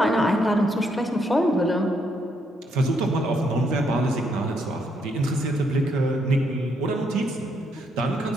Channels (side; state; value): both; normal; correlation 0.75